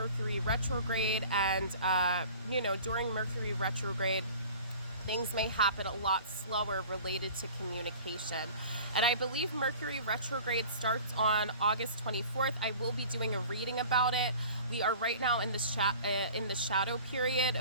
retrograde, and you know, during Mercury retrograde, things may happen a lot slower related to communication. And I believe Mercury retrograde starts on August 24th. I will be doing a reading about it. We are right now in the shadow period.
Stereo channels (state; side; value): inverted; both; correlation -0.44